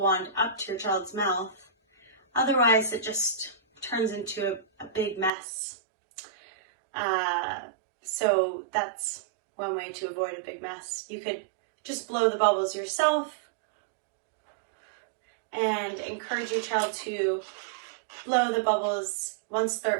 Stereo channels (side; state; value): left; drops out; at 5.3 s